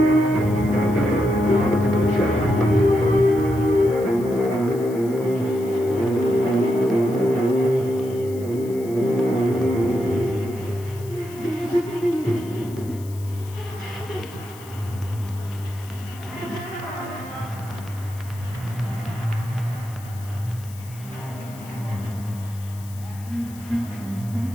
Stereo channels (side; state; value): left; noise; hiss, 20 dB below the sound